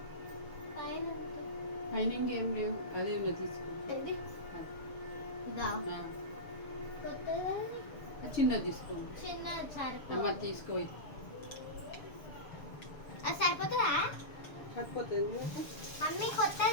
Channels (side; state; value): right; late; 7.0 ms